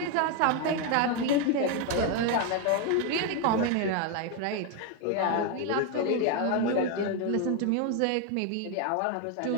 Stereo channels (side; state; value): both; different; correlation 0.01